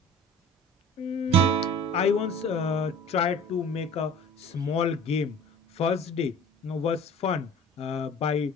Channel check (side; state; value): both; normal; correlation 0.44